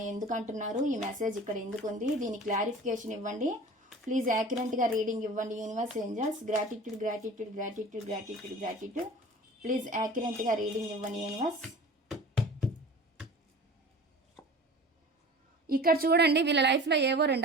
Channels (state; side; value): normal; both; correlation 0.40